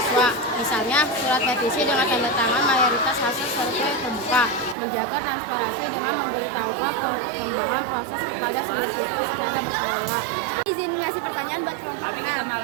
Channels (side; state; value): left; drops out; at 4.8 s